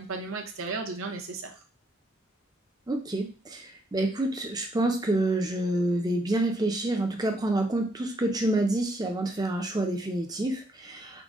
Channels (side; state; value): both; normal; correlation 0.73